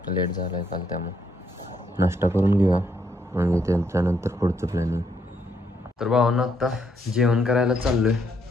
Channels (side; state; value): both; normal; correlation 0.74